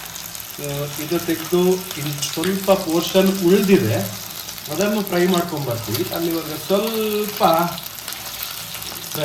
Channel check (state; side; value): identical; both; correlation 1.00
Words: ಸೊ ಇದು ತೆಗೆದು ಇನ್ನು ಸ್ವಲ್ಪ ಪೋರ್ಷನ್ ಉಳಿದಿದೆ, ಅದನ್ನು ಫ್ರೈ ಮಾಡ್ಕೊಂಬರ್ತೀವಿ. ಅಲ್ಲಿವರೆಗೆ ಸ್ವಲ್ಪ